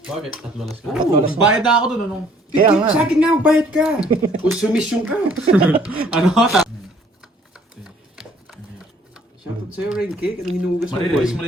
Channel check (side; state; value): both; normal; correlation 0.60